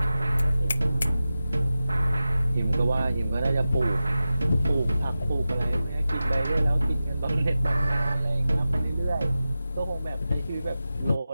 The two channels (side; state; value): both; inverted; correlation -0.94